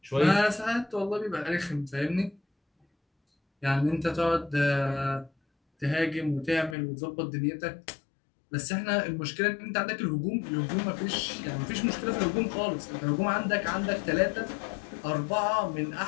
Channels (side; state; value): right; drops out; at 6.8 s